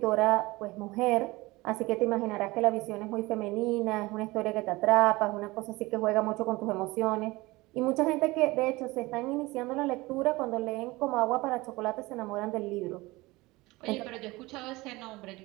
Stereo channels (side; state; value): left; quieter; 21.4 dB